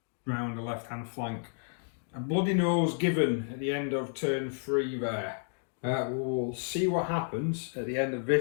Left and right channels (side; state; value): right; silent; digital silence